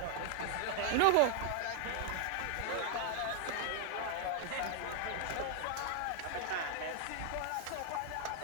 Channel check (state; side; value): different; both; correlation 0.00